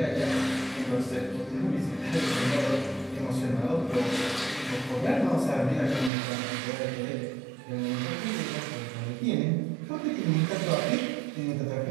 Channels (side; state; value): left; drops out; at 6.1 s